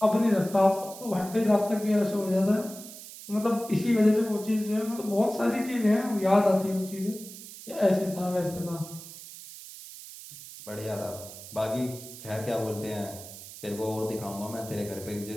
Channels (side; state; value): right; noise; hiss, 14 dB below the sound